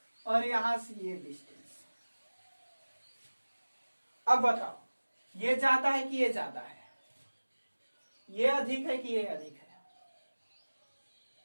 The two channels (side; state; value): both; inverted; correlation -1.00